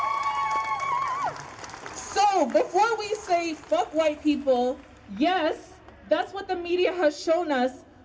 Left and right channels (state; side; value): identical; both; correlation 1.00